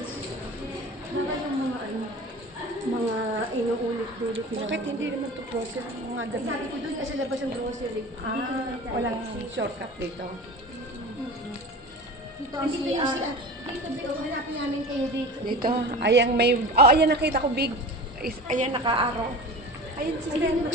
Baka yung mga mga inuulit-ulit na. Bakit hindi naman to process mga Ay, sabi ko doon kasi labas yung grocery. walang shortcut dito. Dito ang CR. Dito, dito. Hanapin namin kayo dito. Dito, ayan may, ayan nakita ko big, ayan naka-araw. Ayan sister,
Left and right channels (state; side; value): normal; both; correlation 0.34